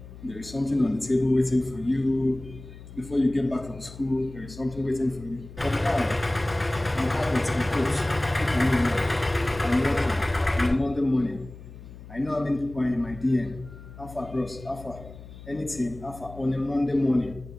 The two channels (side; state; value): left; noise; hum, 16 dB below the sound